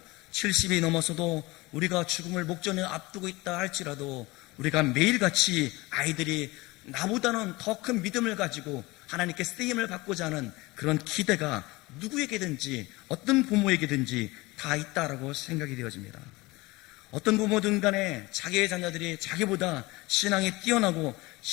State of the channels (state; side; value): quieter; right; 22.0 dB